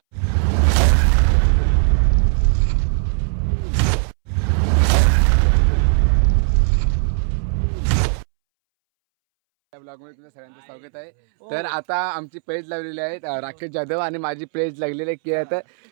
ब्लॉगमध्ये तुमचं सगळ्यांचं स्वागत आहे. तर आता आमची पेज लावलेली आहे राकेश जाधव आणि माझी पेज लागलेली आहे की आता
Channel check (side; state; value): left; silent; 66 dB below the other